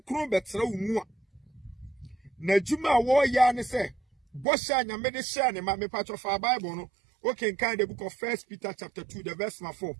betra wo mu a na juma wo ya ne se bosha nyame de share ne ma me pacho fa Bible no okay kan the book of 1 Peter chapter 2 the verse 4.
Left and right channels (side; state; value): left; drops out; at 4.5 s